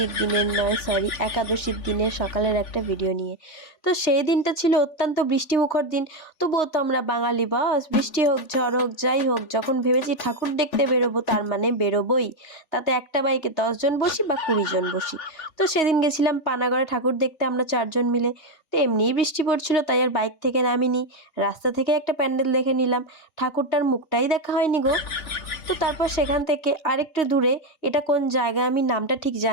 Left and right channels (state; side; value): late; right; 3.2 ms